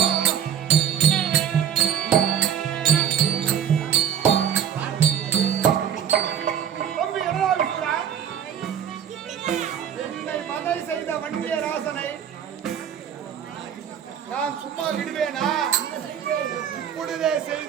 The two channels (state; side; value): quieter; left; 8.8 dB